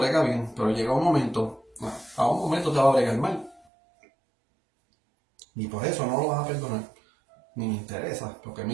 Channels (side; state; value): left; drops out; at 3.6 s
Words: bien, pero llega un momento, a un momento te va a bregar mal. Y por eso no lo vas a perdonar. Ni me interesa, porque